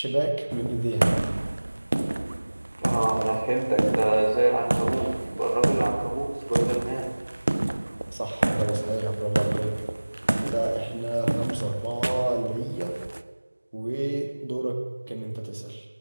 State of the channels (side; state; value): both; inverted; correlation -1.00